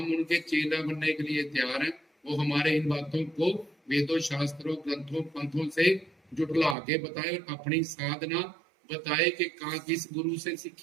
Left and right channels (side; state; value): left; drops out; at 6.8 s